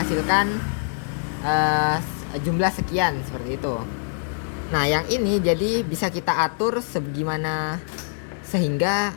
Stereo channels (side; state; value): right; silent; digital silence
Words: jumlah sekian seperti itu. Nah, yang ini jadi bisa kita atur sebagaimana sehingga